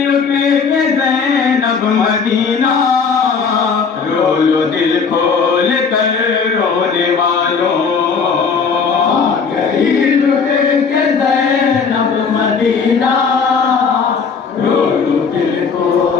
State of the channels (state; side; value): quieter; right; 5.6 dB